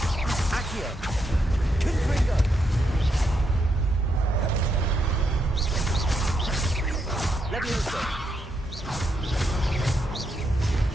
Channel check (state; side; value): normal; both; correlation 0.80